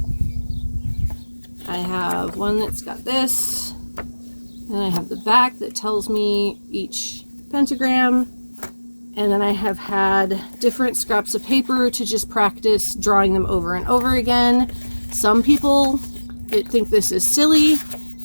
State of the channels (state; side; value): inverted; both; correlation -1.00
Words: I have one that's got this, and I have the back that tells me each pentagram, and then I have had different scraps of paper to just practice drawing them over and over again. Some people think this is silly,